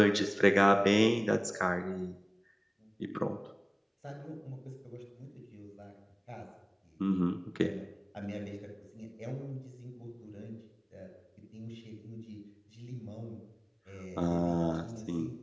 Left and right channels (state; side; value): identical; both; correlation 1.00